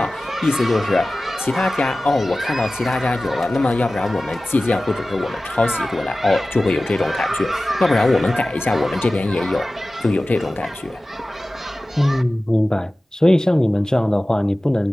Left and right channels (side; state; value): both; normal; correlation 0.97